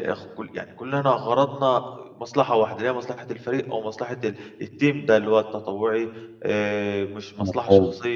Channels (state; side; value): identical; both; correlation 1.00